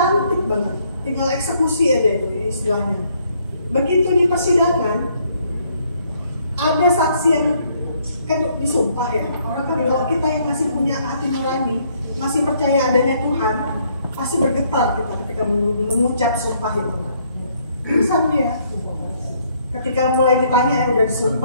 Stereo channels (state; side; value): inverted; both; correlation -0.68